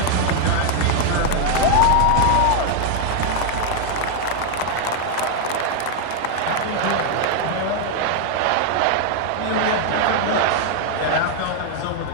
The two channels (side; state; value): both; different; correlation 0.00